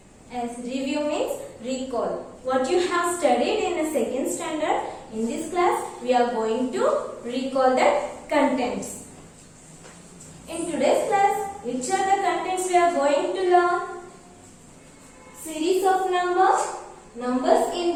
As review means recall. What you have studied in the 2nd standard, in this class, we are going to recall that contents. In today's class, which are the contents we are going to learn? Series of numbers, numbers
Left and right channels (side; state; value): both; identical; correlation 1.00